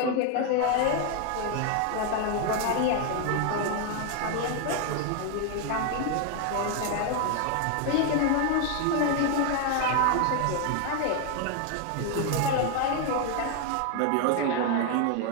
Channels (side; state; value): both; different; correlation 0.01